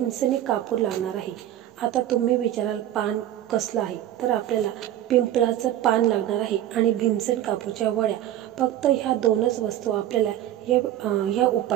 कापूर लागणार आहे. आता तुम्ही विचाराल पान कसलं आहे, तर आपल्याला पिंपळाचं पान लागणार आहे आणि भीमसेन कापूरच्या वड्या. फक्त ह्या दोनच वस्तू आपल्याला या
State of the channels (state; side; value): quieter; left; 12.4 dB